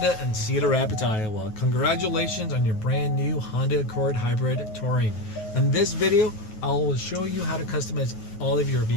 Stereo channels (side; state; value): right; late; 9.3 ms